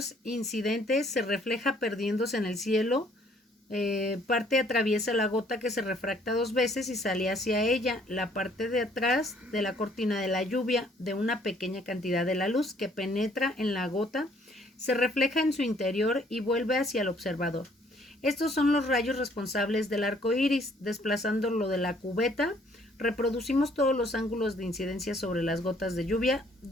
incidente se refleja perdiéndose en el cielo, parte atraviesa la gota, que se refracta dos veces y sale hacia ella. La parte de atrás de la cortina de la lluvia, de una pequeña cantidad de la luz que penetra en la gota, se refleja en su interior y vuelve hacia el observador. Estos son los rayos responsables del arco iris. Desplazándolo de la cubeta, reproducimos todos los ángulos de incidencia sobre las gotas de lluvia.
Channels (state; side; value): normal; both; correlation 0.62